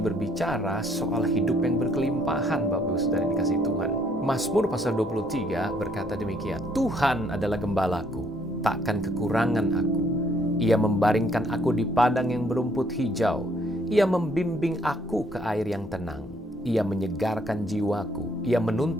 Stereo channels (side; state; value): both; normal; correlation 0.67